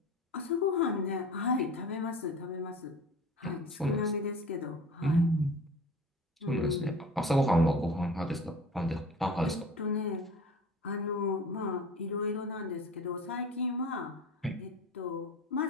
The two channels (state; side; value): normal; both; correlation 0.39